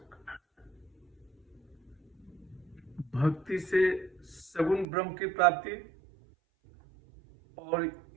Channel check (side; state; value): left; drops out; at 4.9 s